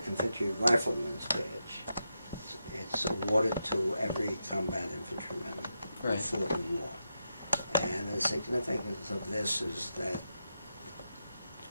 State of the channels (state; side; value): inverted; both; correlation -0.86